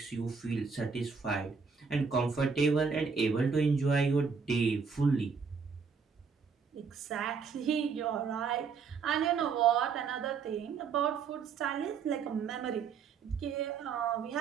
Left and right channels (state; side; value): quieter; left; 5.6 dB